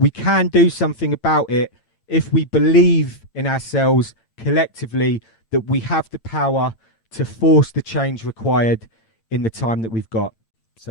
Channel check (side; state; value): right; late; 8.9 ms